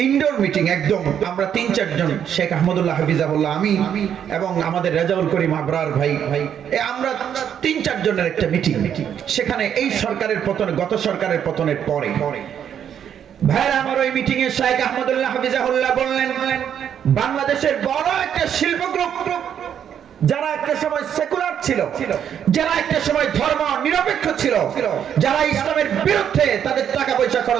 ইনডোর মিটিং একদম, আমরা ৩-৪ জন, শেখ আহমদুল্লাহ হাফিজাহুল্লাহ, আমি এবং আমাদের রেজাউল করিম আবরার ভাই, আমরা ৩-৪ জনের একটা মিটিং। সেখানে এই সরকারের পতন, গত সরকারের পতনের পরে ভাইরা আমার ওই মিটিং এ শেখ আহমদুল্লাহ হাফিজাহুল্লাহ বললেন, বাংলাদেশের বড় একটা শিল্প গ্রুপ, যারা একটা সময় সেকুলার ছিল, যারা একটা সময় ধর্ম নিরপেক্ষ ছিল, যারা ইসলামের বিরুদ্ধে তাদের টাকা পয়সা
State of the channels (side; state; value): left; quieter; 8.9 dB